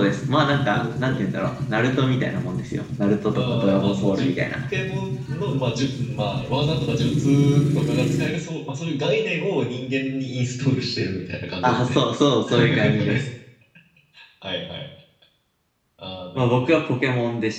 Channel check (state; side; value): identical; both; correlation 1.00